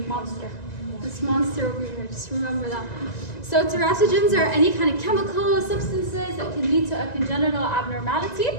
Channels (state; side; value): late; right; 1.9 ms